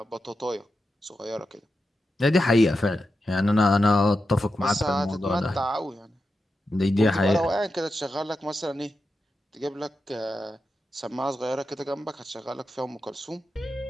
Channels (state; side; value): normal; both; correlation 0.89